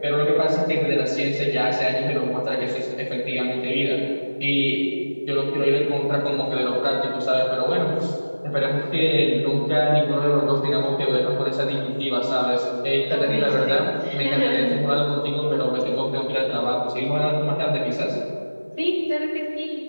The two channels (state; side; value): inverted; both; correlation -1.00